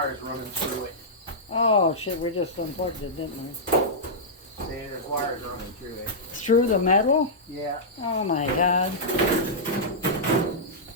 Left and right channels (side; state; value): both; normal; correlation -0.12